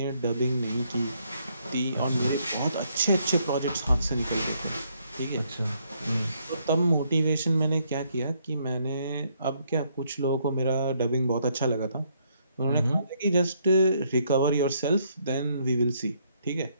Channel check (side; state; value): both; inverted; correlation -0.71